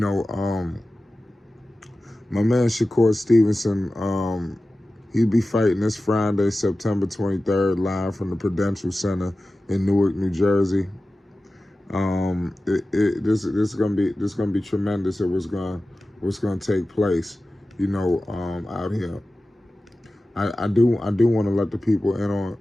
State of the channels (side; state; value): both; normal; correlation 0.95